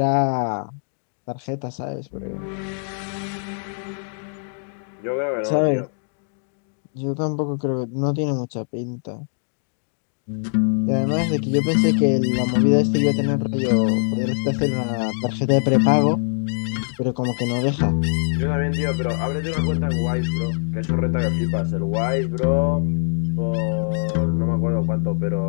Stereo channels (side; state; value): right; silent; digital silence